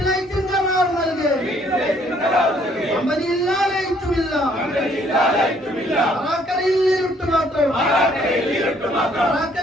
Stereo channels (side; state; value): both; normal; correlation 0.64